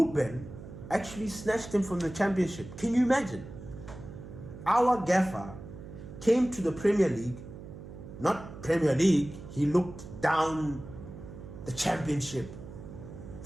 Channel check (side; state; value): right; noise; hum, 13 dB below the sound